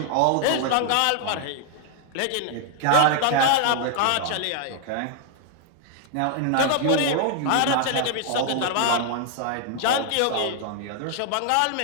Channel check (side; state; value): both; different; correlation 0.00